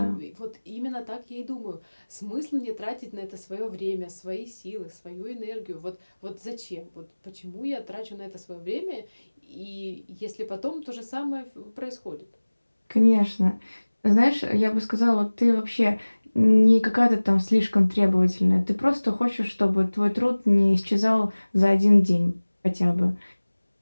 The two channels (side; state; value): both; inverted; correlation -1.00